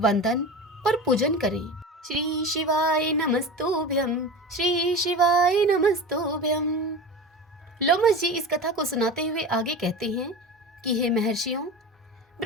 और पूजन करें। श्री शिवाय नमस्तुभ्यं, श्री शिवाय नमस्तुभ्यं। लोमस जी इस कथा को सुनाते हुए आगे कहते हैं कि हे महर्षियों,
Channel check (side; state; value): both; normal; correlation 0.30